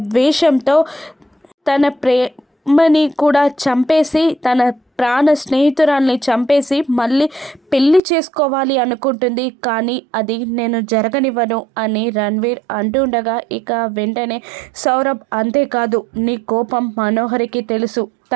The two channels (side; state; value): left; drops out; at 8.0 s